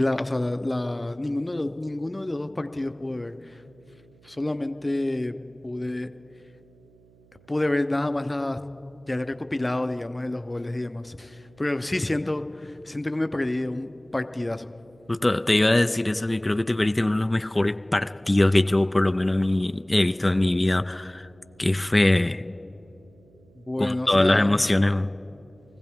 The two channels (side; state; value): right; noise; hum, 29 dB below the sound